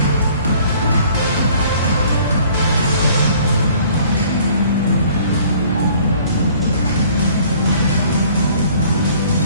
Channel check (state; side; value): inverted; both; correlation -0.55